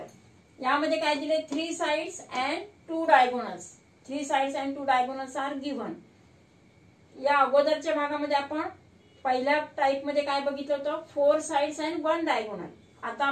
यामध्ये काय दिले, 3 sides and 2 diagonals. 3 sides and 2 diagonals are given. या अगोदरच्या भागामध्ये आपण पहिल्या टाइप मध्ये काय बघितलं होतं, 4 साइड्स अँड 1 डायगोनल. आता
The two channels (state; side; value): identical; both; correlation 1.00